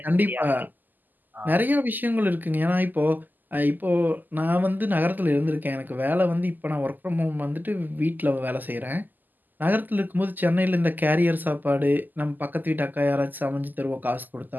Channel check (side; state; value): left; late; 0.086 ms